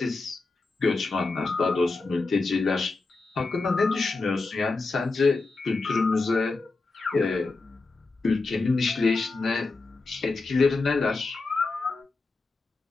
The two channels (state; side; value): quieter; right; 3.7 dB